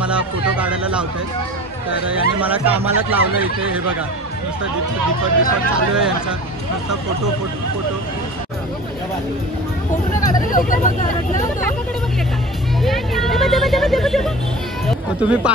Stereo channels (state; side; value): normal; both; correlation 0.39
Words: फोटो काढायला लावत आहेत. तर यांनी मला कामालाच लावलं इथे. हे बघा नुसतं दीपक चालू आहे यांचा, नुसतं फोटो. तुम्ही